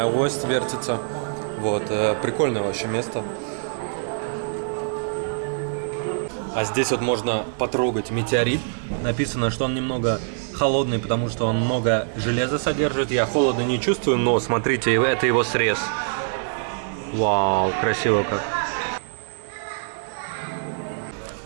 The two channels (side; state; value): left; silent; 62 dB below the other